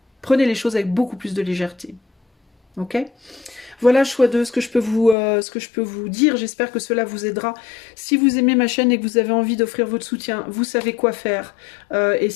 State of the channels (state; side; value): drops out; right; at 5.2 s